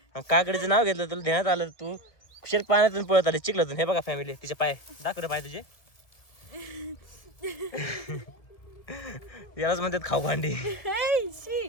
आणि काकडीचं नाव घेतलं, तुला ध्यानात आलं, तू कुशल पाण्यातून पळत आली चिखलातून. हे बघा फॅमिली, तिचे पाय दाखव पाय तुझे. यालाच म्हणतात खाऊ भांडी.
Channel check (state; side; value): late; right; 2.0 ms